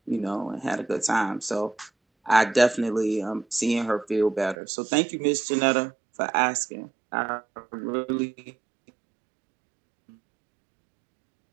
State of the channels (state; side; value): drops out; left; at 4.5 s